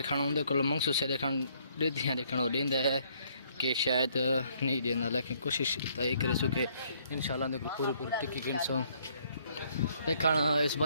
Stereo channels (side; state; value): both; inverted; correlation -0.66